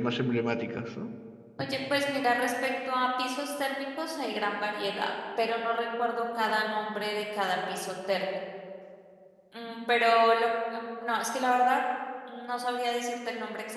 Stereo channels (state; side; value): identical; both; correlation 1.00